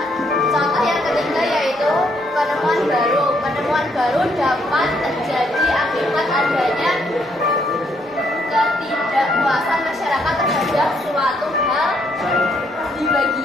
Contoh yang ketiga yaitu penemuan baru. Penemuan baru dapat terjadi akibat adanya ketidakpuasan masyarakat terhadap suatu hal di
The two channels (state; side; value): noise; right; rumble, 30 dB below the sound